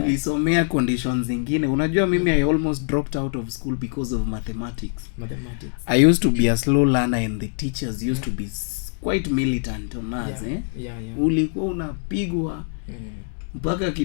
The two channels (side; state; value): right; silent; digital silence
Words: conditions zingine. Unajua mimi I almost dropped out of school because of mathematics. I used to be a slow learner and the teachers used to be quite militant on us. Ulikuwa unapigwa mpaka